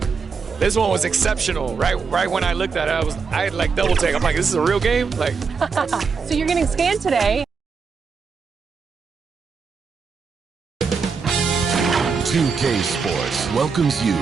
this one was exceptional. Right when I looked at it, I had like double take. I'm like, this is a real game? Like, so you're getting scanned today. 2K Sports welcomes you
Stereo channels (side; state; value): left; quieter; 5.3 dB